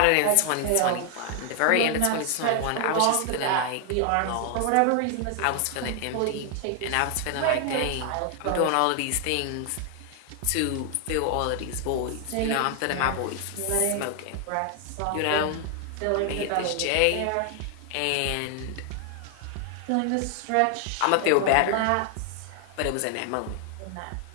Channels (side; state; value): both; different; correlation 0.00